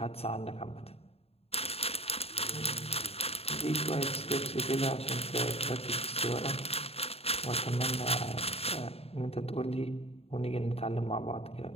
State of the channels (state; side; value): late; right; 0.29 ms